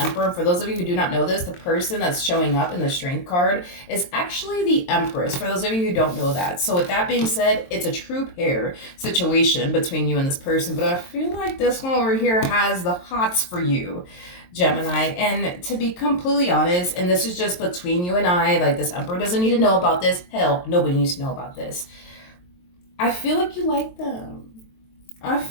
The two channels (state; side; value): late; right; 22 ms